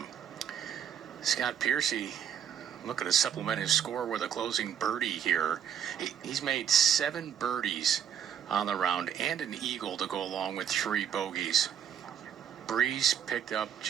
Scott Piercy looking to supplement his score with a closing birdie here. He's made 7 birdies on the round and an eagle to go along with 3 bogeys. Breeze picked up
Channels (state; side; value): quieter; left; 8.8 dB